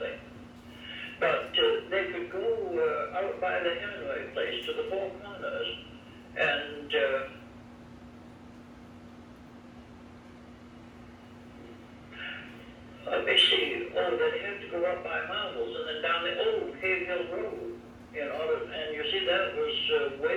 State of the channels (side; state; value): both; identical; correlation 1.00